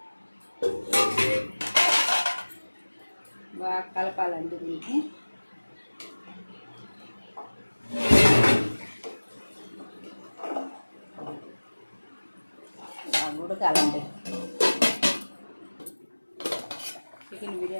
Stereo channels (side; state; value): both; inverted; correlation -1.00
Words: బాగా కలపాలండి దీనికి. బాగా ఉడకాలండి. చికెన్